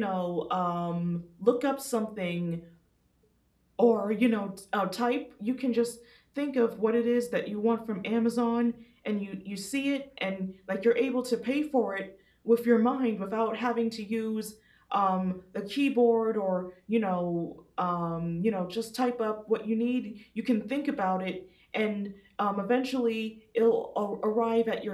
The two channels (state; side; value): identical; both; correlation 1.00